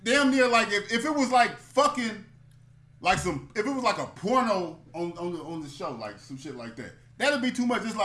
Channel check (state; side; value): identical; both; correlation 1.00